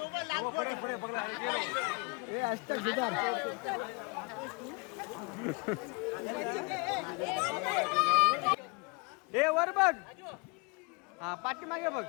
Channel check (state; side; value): quieter; right; 30.5 dB